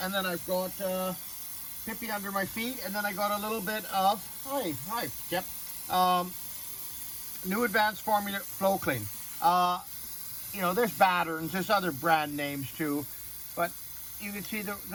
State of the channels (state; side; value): identical; both; correlation 1.00